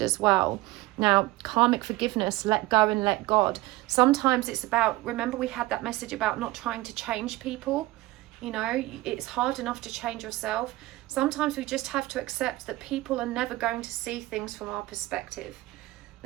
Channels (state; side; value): quieter; left; 19.0 dB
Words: as well. Now, karmic forgiveness, let go and let God. Sometimes it's about, remember we had that message about not trying to change people. You know, it's hard enough to change yourself. Sometimes we just have to accept that people are never going to see things from our perspective.